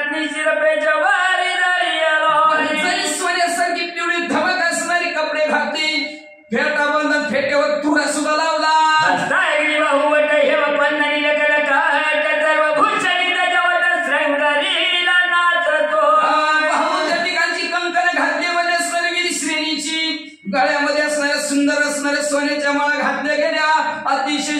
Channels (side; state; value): both; identical; correlation 1.00